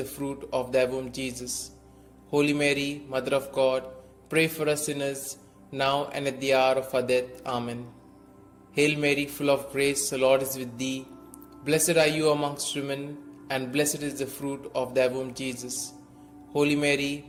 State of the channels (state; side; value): identical; both; correlation 1.00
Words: fruit of thy womb, Jesus. Holy Mary, Mother of God, pray for us sinners, now and at the hour of our death. Amen. Hail Mary, full of grace, the Lord is with thee. Blessed are you amongst women, and blessed is the fruit of thy womb, Jesus. Holy Mary,